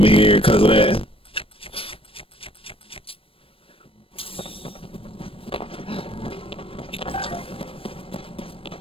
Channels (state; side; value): late; right; 0.27 ms